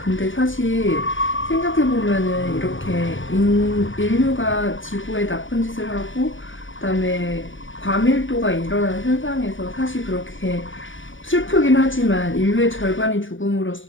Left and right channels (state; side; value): late; right; 0.57 ms